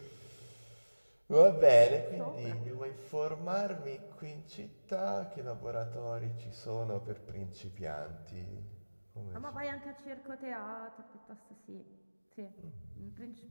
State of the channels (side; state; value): both; inverted; correlation -1.00